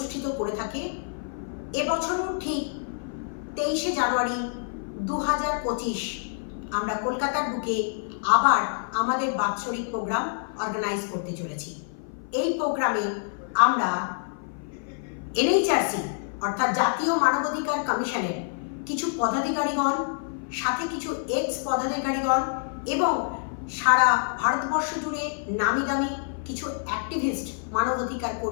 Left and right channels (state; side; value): silent; right; 55 dB below the other